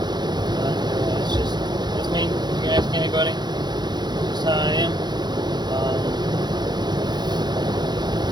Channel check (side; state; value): left; late; 0.21 ms